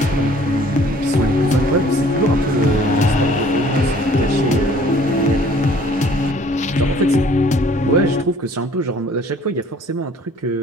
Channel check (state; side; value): normal; both; correlation 0.55